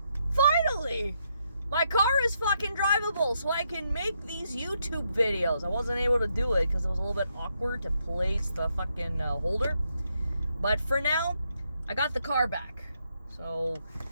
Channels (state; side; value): inverted; both; correlation -0.78